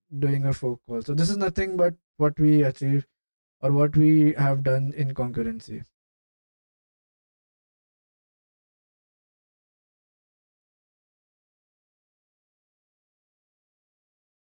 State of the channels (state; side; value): inverted; both; correlation -1.00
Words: doing a fork call. So this is nothing but what we achieve, or what we have done in concurrency.